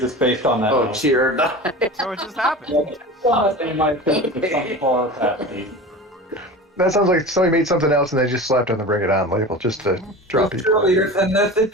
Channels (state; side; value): normal; both; correlation 0.33